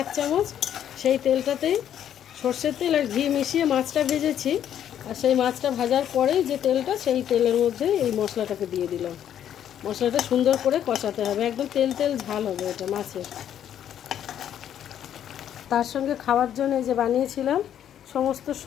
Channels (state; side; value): quieter; right; 10.1 dB